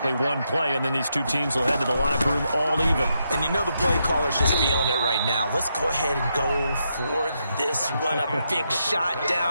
one play, and then these two teams will head to the locker room all even. And you know the play caller's just feeling it right now. Let's go ahead and go for this one. A big shot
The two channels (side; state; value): both; inverted; correlation -0.81